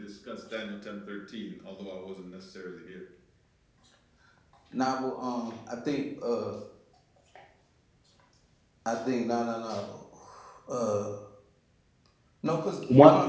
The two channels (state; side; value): identical; both; correlation 1.00